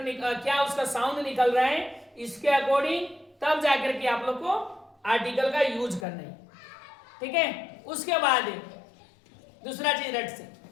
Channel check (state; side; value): drops out; right; at 6.1 s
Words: क्या उसका साउंड निकल रहा है, इसके अकॉर्डिंग तब जाकर के आप लोग को आर्टिकल का यूज करना है। ठीक है, उसके बाद दूसरा चीज रट से